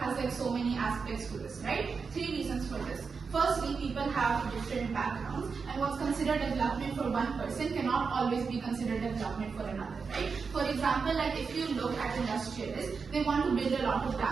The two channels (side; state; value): left; quieter; 5.2 dB